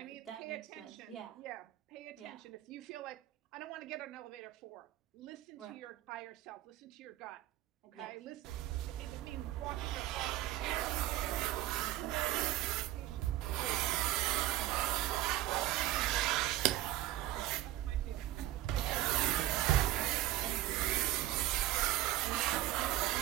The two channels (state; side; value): quieter; left; 14.7 dB